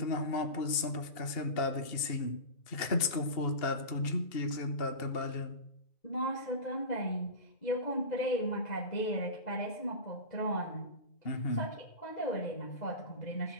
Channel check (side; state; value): right; late; 2.8 ms